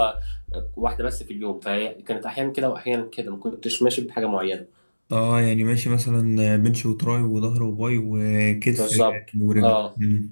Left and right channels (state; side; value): inverted; both; correlation -1.00